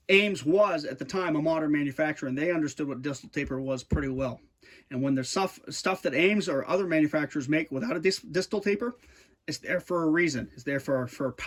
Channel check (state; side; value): identical; both; correlation 1.00